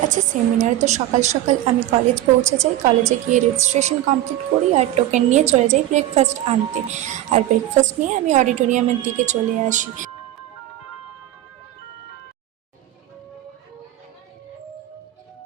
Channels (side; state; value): left; quieter; 13.8 dB